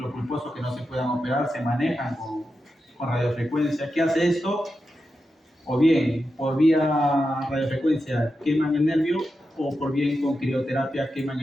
pulposo que no se puedan operar, se manejan con radiofrecuencia. ¿Qué hace esto? O bien por vía radiofrecuencia queman el nervio, o por bien con crioterapia queman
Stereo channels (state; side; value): normal; both; correlation 0.89